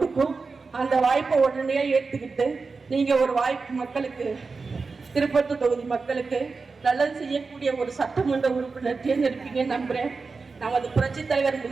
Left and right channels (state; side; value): quieter; left; 4.4 dB